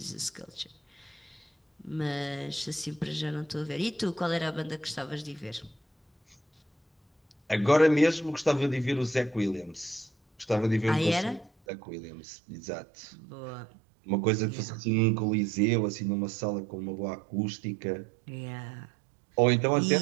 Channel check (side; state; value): left; drops out; at 11.5 s